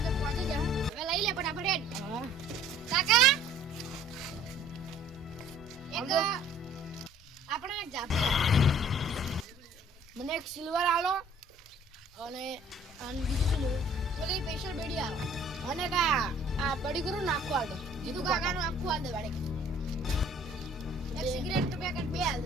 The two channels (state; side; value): normal; both; correlation 0.55